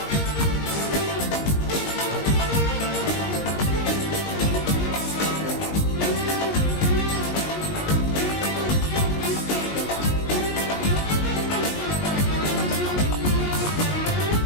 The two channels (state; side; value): late; right; 19 ms